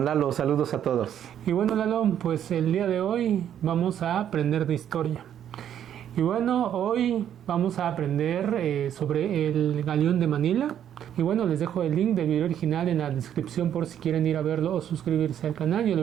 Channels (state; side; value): quieter; left; 9.9 dB